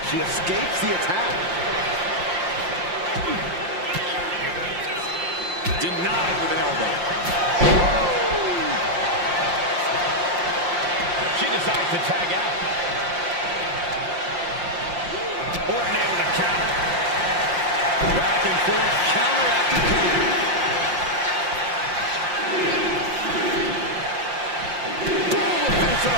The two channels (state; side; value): late; left; 5.7 ms